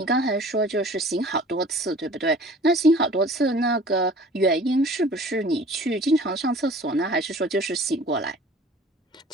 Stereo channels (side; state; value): both; normal; correlation 0.47